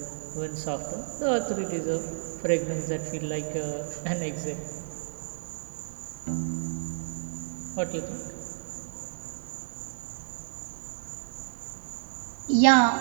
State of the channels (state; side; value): silent; left; digital silence